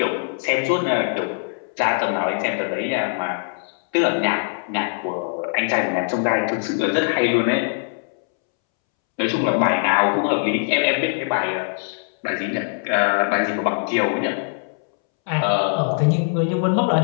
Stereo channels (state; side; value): silent; right; 64 dB below the other